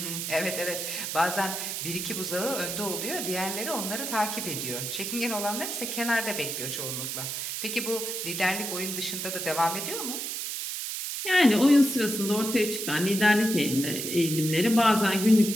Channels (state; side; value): noise; right; hiss, 4 dB below the sound